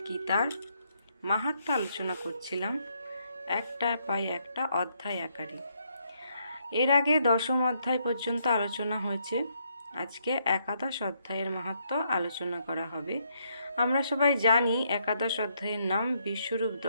গীতার মাহাত্ম্য আলোচনা করছিলাম, একটা পাই একটা অধ্যায় আকারে। এর আগে 10ম অধ্যায় পর্যন্ত আলোচনা হয়েছে। আজকে একাদশ অধ্যায়ের মাহাত্ম্য আলোচনা করা হবে। আমরা সবাই জানি একাদশ অধ্যায়ের নাম বিশ্বরূপ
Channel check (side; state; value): both; inverted; correlation -0.74